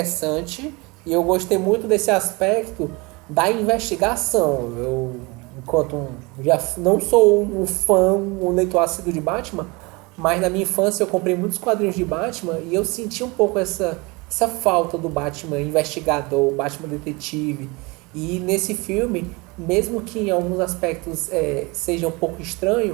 e eu gostei muito desse aspecto da investigação. Eu, já não sou um fã, um leitor assíduo de Batman, mas na minha infância eu comprei muitos quadrinhos de Batman e eu senti um pouco essa falta do Batman investigador, o Batman detetive. E nesse filme, mesmo que em alguns aspectos seja um pouco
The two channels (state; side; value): quieter; left; 26.0 dB